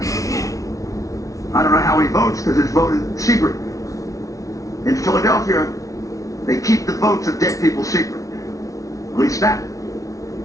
I don't know how he votes because it's voted secret. In Philadelphia, they keep the votes of dead people secret. At least that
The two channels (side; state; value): right; late; 0.17 ms